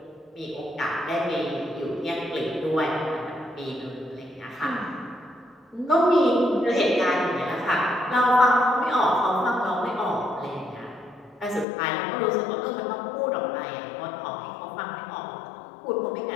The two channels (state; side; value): drops out; right; at 11.7 s